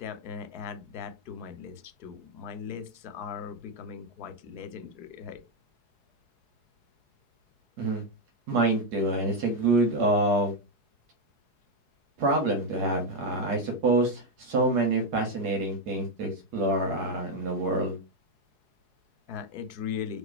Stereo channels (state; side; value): late; left; 4.7 ms